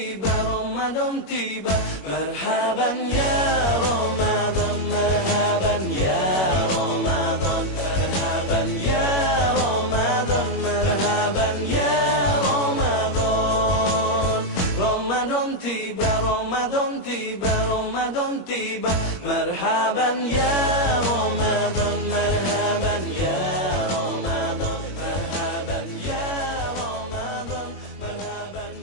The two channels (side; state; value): right; late; 21 ms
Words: Ramadan tiba. Marhaban ya Ramadan, marhaban ya Ramadan, marhaban ya Ramadan, marhaban ya Ramadan. Ramadan tiba, Ramadan tiba, Ramadan tiba. Marhaban ya Ramadan, marhaban ya Ramadan, marhaban ya Ramadan, marhaban